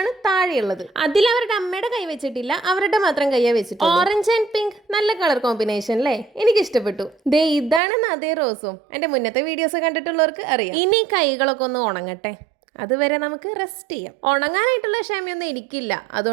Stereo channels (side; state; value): left; drops out; at 7.8 s